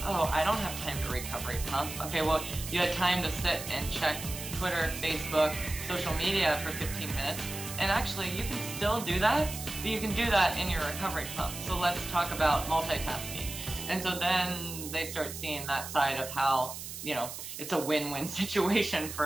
oh, I don't have time to recovery pump. Okay, well, you had time to sit and check Twitter, Facebook, social media for 15 minutes. And actually, you can still do that, but you can do that in your recovery pump. So let's talk about multitasking. And so then they start seeing that side of how, you know, it's a win-win situation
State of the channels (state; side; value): noise; right; hiss, 9 dB below the sound